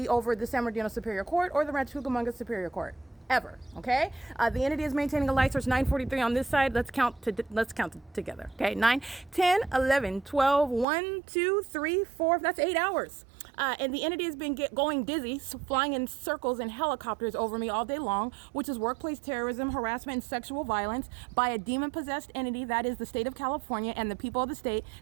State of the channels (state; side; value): drops out; left; at 10.9 s